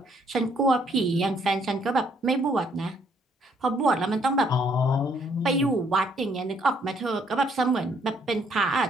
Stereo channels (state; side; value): normal; both; correlation 0.67